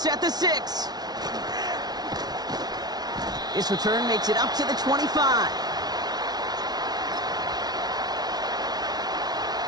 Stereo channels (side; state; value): left; late; 0.19 ms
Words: at the 6. This return makes it up to the 25.